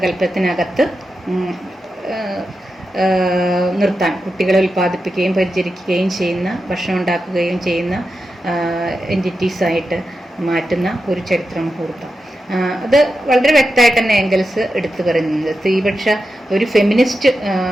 നിർത്താൻ, കുട്ടികളെ ഉൽപ്പാദിപ്പിക്കുകയും പരിചരിക്കുകയും ചെയ്യുന്ന, ഭക്ഷണം ഉണ്ടാക്കുകയും ചെയ്യുന്ന എൻറ്റിറ്റീസായിട്ട് മാറ്റുന്ന ഒരു ചരിത്ര മുഹൂർത്തം. അത് വളരെ വ്യക്തമായിട്ട് തന്നെ എംഗൽസ് എടുത്തു പറയുന്നത്. സ്ത്രീപക്ഷ ഒരു ഫെമിനിസ്റ്റ്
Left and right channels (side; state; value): both; normal; correlation 0.89